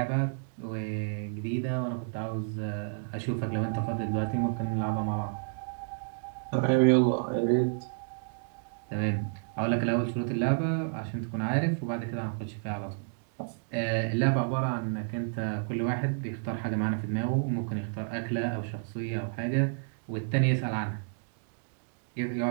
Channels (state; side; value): silent; left; digital silence